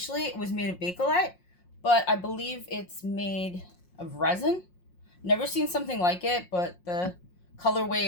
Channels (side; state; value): right; late; 5.6 ms